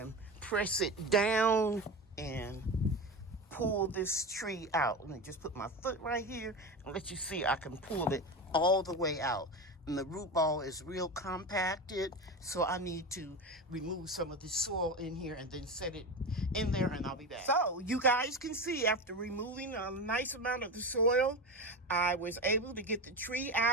press it down and pull this tree out. Let me just put my foot right here and let you see I can pull it all the way out. And the root ball is real compacted, so I need to remove some of the soil in here and then set it in there, and I'll be back. So you guys can see, after removing a nice amount of the soil, I was able to get the tree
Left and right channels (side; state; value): both; normal; correlation 0.23